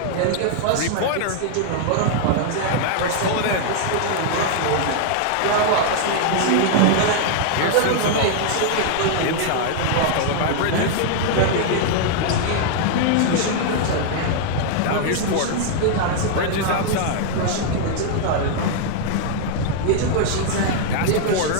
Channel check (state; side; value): different; both; correlation 0.00